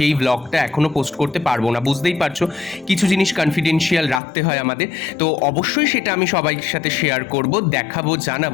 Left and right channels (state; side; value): drops out; right; at 4.2 s